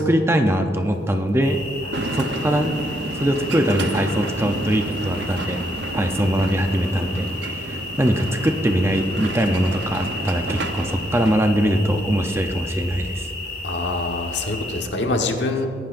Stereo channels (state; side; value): normal; both; correlation 0.74